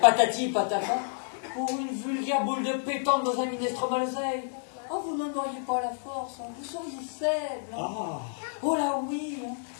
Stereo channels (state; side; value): silent; right; digital silence